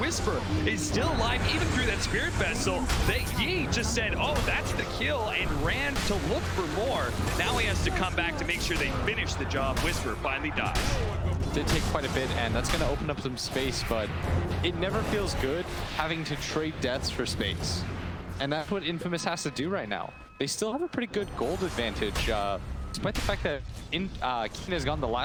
is still alive even through that Spirit Vessel. Yi just said, oh, that's the kill, and ran to look for more. Now he has to come back to make sure they finish the job. Whisper finally dies. Did take quite a bit, and that's going to open up some space, but it never feels good having to trade deaths for space. And that's what Infamous has to do right now. They still have a pretty good gold advantage, despite the fact that Keen has gotten the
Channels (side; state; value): both; identical; correlation 1.00